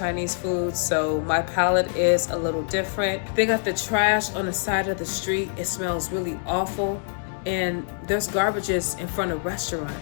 food, so my palate is a little different. They got the trash on the side of the street. It smells really awful. And there's garbages in front of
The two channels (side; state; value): right; silent; 62 dB below the other